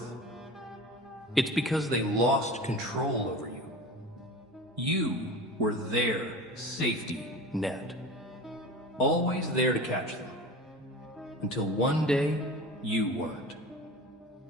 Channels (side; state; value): both; normal; correlation 0.34